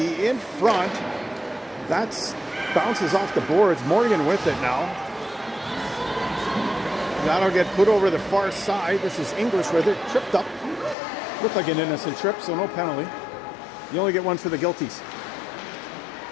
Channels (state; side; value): drops out; right; at 11.0 s